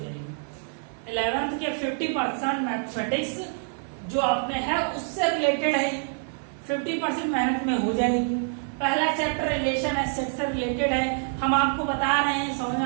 11th के 50% मैथमेटिक्स जो आपने है उससे रिलेटेड है, 50% मेहनत में हो जाएगी। पहला चैप्टर रिलेशन है, सेट से रिलेटेड है, हम आपको बता रहे हैं, समझ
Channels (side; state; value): left; silent; 61 dB below the other